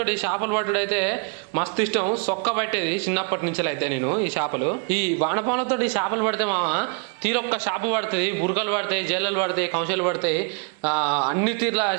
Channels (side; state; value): left; quieter; 38.2 dB